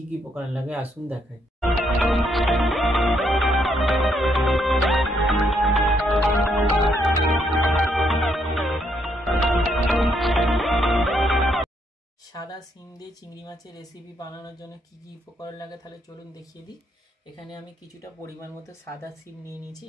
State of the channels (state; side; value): normal; both; correlation 0.74